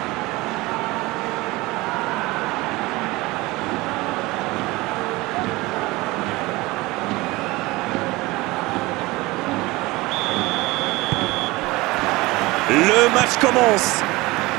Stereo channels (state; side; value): quieter; left; 21.3 dB